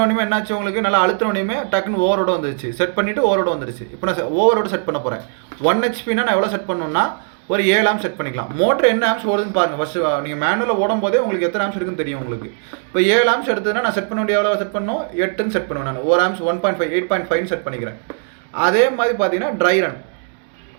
என்னாச்சு, உங்களுக்கு நல்லா அழுத்தினோடனே டக்குன்னு ஓவரோட வந்துருச்சு. செட் பண்ணிவிட்டு ஓவரோட வந்துருச்சு. இப்போ நான் ஓவரோட செட் பண்ண போகிறேன். 1 HP நான் எவ்வளோ செட் பண்ணணும்னா ஒரு 7 ஆம்ஸ் செட் பண்ணிக்கலாம். மோட்டர் என்ன ஆம்ஸ் ஓடுதுன்னு பாருங்கள். ஃபஸ்ட்டு நீங்கள் மேனுவலில் ஓடும் போதே உங்களுக்கு எத்தனை ஆம்ஸ் இருக்குன்னு தெரியும் உங்களுக்கு. இப்போ 7 ஆம்ஸ் எடுத்ததுன்னா நான் செட் பண்ண வேண்டிய எவ்வளோ செட் பண்ணணும், 8ன்னு செட் பண்ணுவேன். நான் 1 ஆம்ஸ் 1.5 8.5 செட் பண்ணிக்கிறேன். அதே மாதிரி பார்த்தீங்கன்னா ட்ரை ரன்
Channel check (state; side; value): silent; left; 64 dB below the other